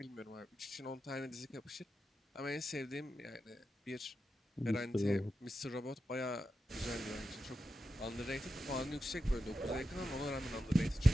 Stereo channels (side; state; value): both; normal; correlation 0.89